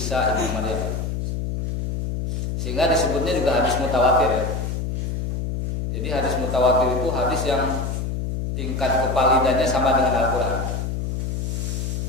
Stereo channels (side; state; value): left; noise; hum, 2 dB below the sound